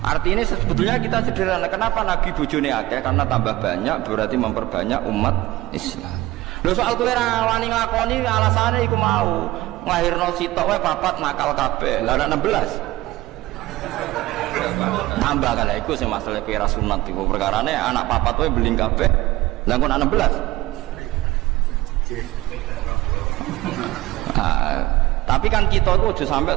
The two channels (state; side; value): quieter; left; 17.8 dB